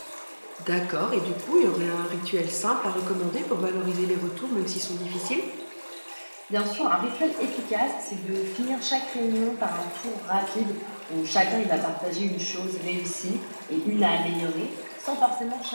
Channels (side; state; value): both; inverted; correlation -1.00